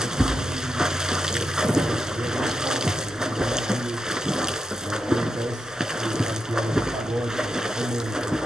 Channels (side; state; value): both; normal; correlation 0.86